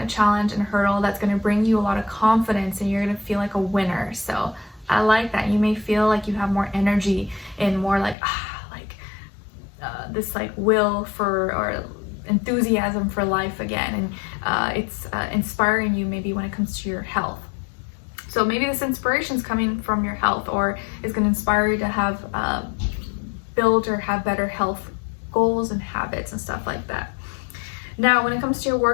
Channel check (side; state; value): right; drops out; at 8.2 s